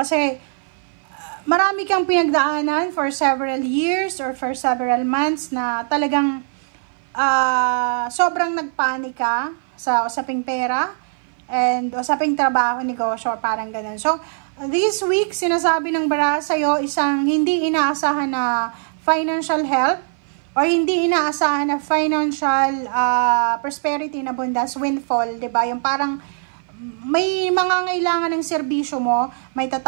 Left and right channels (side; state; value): left; silent; 58 dB below the other